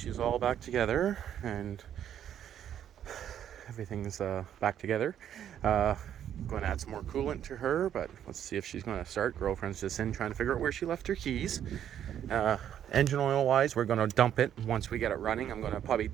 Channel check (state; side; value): quieter; left; 10.0 dB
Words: all back together, and everything's back together. Going to add some more coolant to her, but let's see if she's going to start. Girlfriend's just in trying to figure out where she left her keys. Engine oil wise, we're going to dump it once we get it running. I'm going to probably